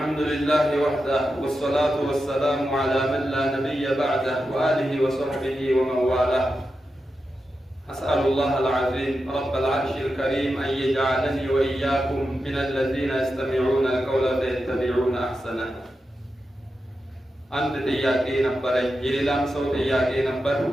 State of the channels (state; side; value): normal; both; correlation 0.89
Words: لله وحده والصلاة والسلام على من لا نبي بعده وآله وصحبه ومن والاه. أسأل الله العظيم رب العرش الكريم أن يجعلني وإياكم من الذين يستمعون القول فيتبعون أحسنه. አንድ ጥያቄ ነበረኝ፣ የሌላም ሰው ጥያቄ ነበር።